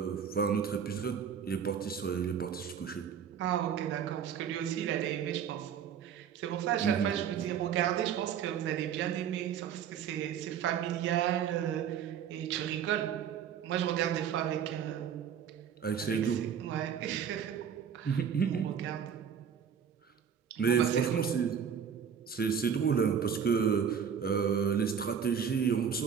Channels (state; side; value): quieter; left; 7.9 dB